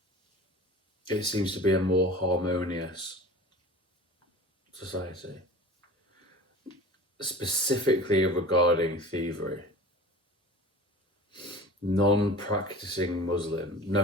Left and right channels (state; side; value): normal; both; correlation 0.39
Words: it seems to be a more harmonious society, specifically regarding thievery. Non-practicing Muslim,